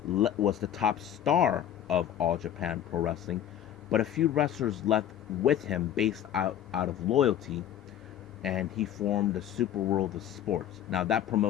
was the top star of All Japan Pro Wrestling, but a few wrestlers left with him based out of loyalty, and he formed the Super World of Sports. Now, that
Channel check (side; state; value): right; quieter; 10.6 dB